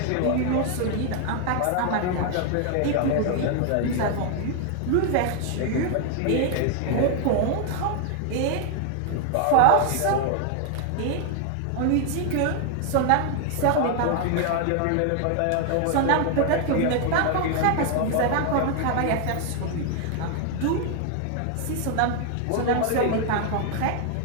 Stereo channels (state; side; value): different; both; correlation 0.00